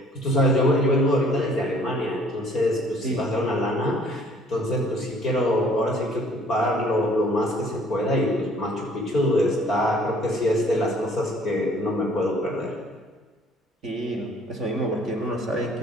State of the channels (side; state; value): both; normal; correlation 0.58